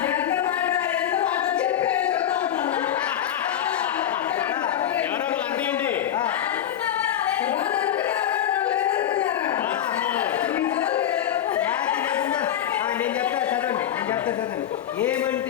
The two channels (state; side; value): quieter; right; 10.6 dB